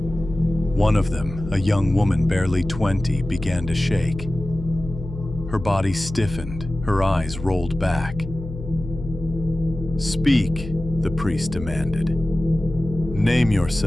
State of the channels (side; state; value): left; noise; hum, 11 dB below the sound